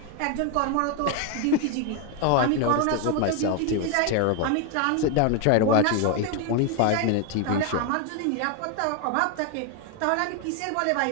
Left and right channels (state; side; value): different; both; correlation 0.01